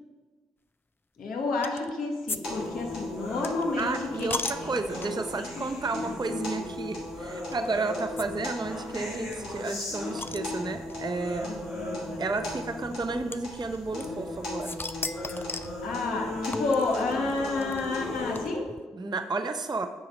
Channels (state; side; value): normal; both; correlation 0.67